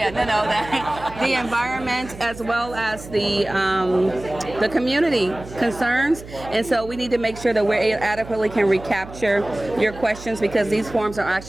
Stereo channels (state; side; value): noise; right; hum, 15 dB below the sound